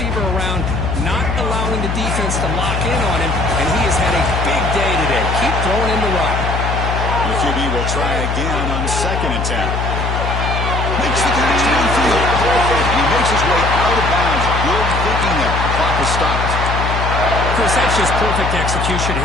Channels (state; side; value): noise; left; hum, 1 dB below the sound